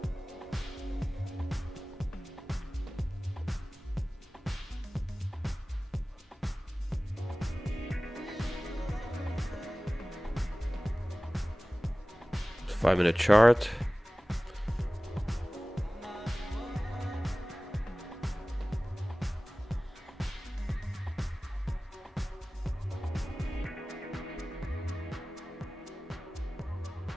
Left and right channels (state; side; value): normal; both; correlation 0.98